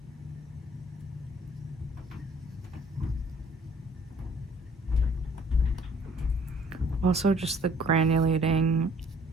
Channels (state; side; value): normal; both; correlation 0.57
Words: Also, just the granulating